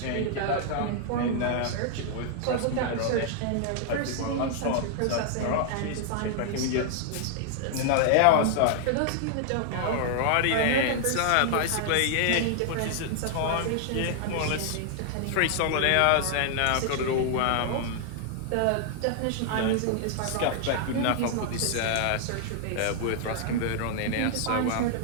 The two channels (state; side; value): different; both; correlation 0.00